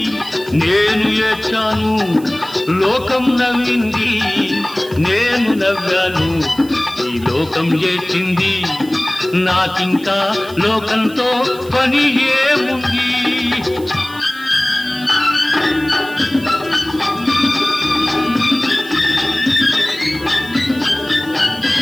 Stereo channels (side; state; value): right; noise; hiss, 20 dB below the sound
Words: నేను ఏడ్చాను, లోకం నవ్వింది, నేను నవ్వాను, ఈ లోకం ఏడ్చింది, నాకింకా లోకంతో పని ఏముంది?